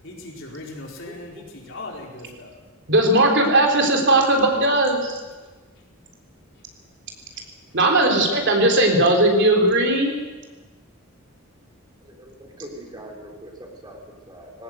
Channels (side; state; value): both; normal; correlation -0.17